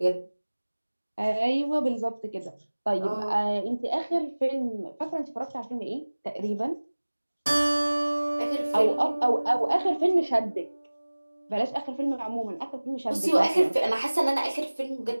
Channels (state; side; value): inverted; both; correlation -1.00